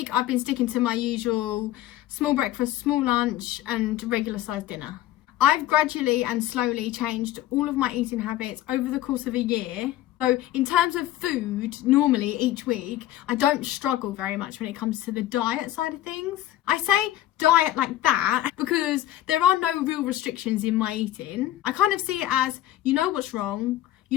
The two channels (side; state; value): right; quieter; 14.0 dB